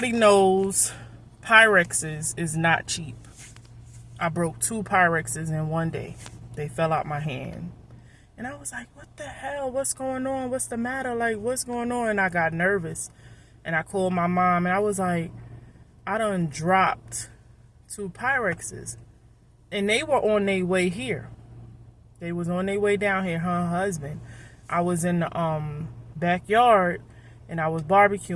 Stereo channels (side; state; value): both; identical; correlation 1.00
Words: knows Pyrexes is not cheap. I broke 2 Pyrexes in one day. They fell out my hand. And I was like, what the hell? What's going on? What's the matter? Like, what's going on? And I got nervous. And I called my mom, and I was like, I done dropped 2 Pyrexes. And they were on their way here. They was on their way down here, her husband. I was in the backyard, and I was